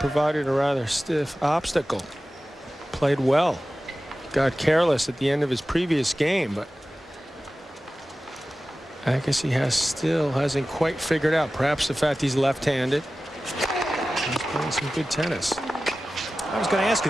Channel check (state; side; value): normal; both; correlation 0.96